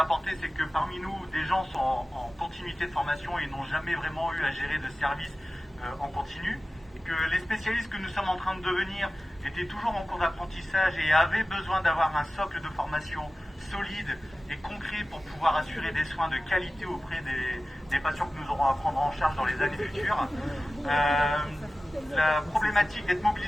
c'est que parmi nous, des gens sont en continuité de formation et n'ont jamais vraiment eu à gérer de service en continu, et que les spécialistes que nous sommes en train de devenir étaient toujours en cours d'apprentissage et avaient besoin d'avoir un socle de formation solide et concret pour pouvoir assurer des soins de qualité auprès des patients que nous aurons à prendre en charge dans les années futures. La problématique d'être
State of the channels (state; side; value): normal; both; correlation 0.96